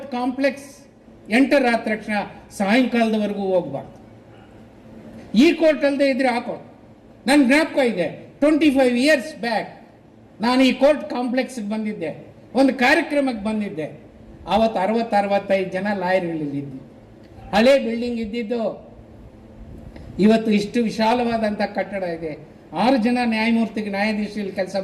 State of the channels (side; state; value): both; identical; correlation 1.00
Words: ಕಾಂಪ್ಲೆಕ್ಸ್ ಎಂಟರ್ ಆದ ತಕ್ಷಣ ಸಾಯಂಕಾಲದವರೆಗೂ ಹೋಗ್ಬಾರ್ದು. ಈ ಕೋರ್ಟ್ ಅಲ್ಲದೆ ಇದ್ರೆ ಆ ಕೋರ್ಟ್. ನನ್ನ ಜ್ಞಾಪಕ ಇದೆ, 25 ಇಯರ್ಸ್ ಬ್ಯಾಕ್ ನಾನು ಈ ಕೋರ್ಟ್ ಕಾಂಪ್ಲೆಕ್ಸ್ಗೆ ಬಂದಿದ್ದೆ, ಒಂದು ಕಾರ್ಯಕ್ರಮಕ್ಕೆ ಬಂದಿದ್ದೆ. ಆವತ್ತು 60-65 ಜನ ಲಾಯರ್ಗಳಿದ್ದು, ಹಳೆ ಬಿಲ್ಡಿಂಗ್ ಇದ್ದಿದ್ದು. ಇವತ್ತು ಇಷ್ಟು ವಿಶಾಲವಾದಂಥ ಕಟ್ಟಡ ಇದೆ. 6 ಜನ ನ್ಯಾಯಾಧೀಶರಲ್ಲಿ ಕೆಲಸ